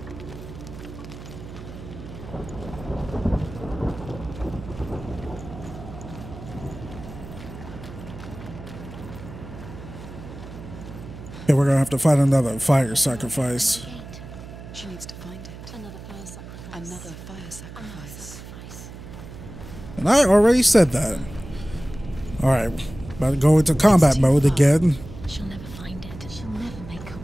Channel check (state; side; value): noise; right; hum, 13 dB below the sound